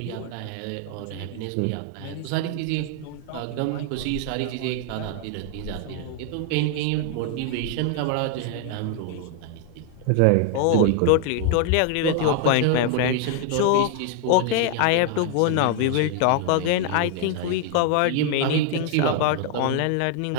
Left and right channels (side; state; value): both; different; correlation 0.00